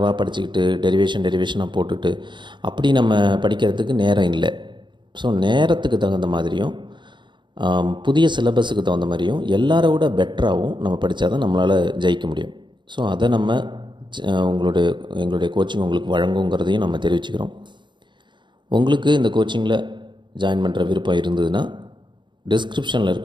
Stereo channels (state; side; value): late; left; 0.23 ms